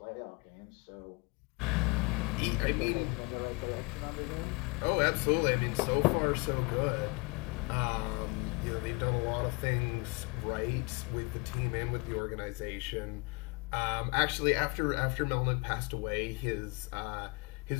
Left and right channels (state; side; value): quieter; right; 28.4 dB